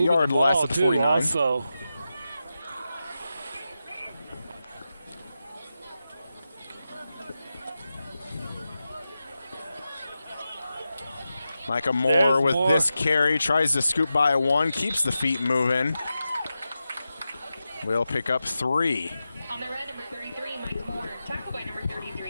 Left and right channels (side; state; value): both; inverted; correlation -0.91